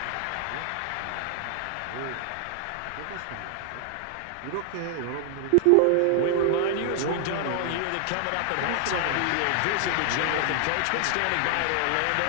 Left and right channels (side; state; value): both; different; correlation 0.00